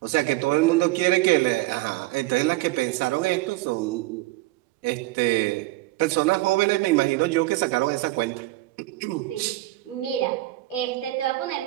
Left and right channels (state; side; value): quieter; left; 18.4 dB